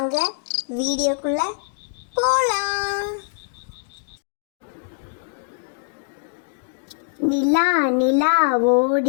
வீடியோக்குள்ள போலாம். நிலா நிலா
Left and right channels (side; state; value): right; silent; digital silence